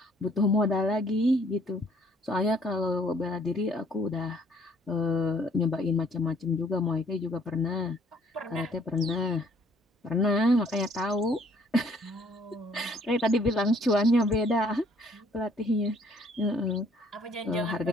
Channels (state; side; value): normal; both; correlation 0.62